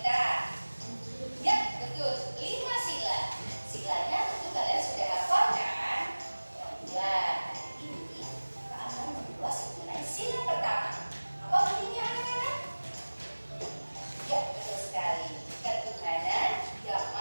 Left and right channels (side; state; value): both; inverted; correlation -1.00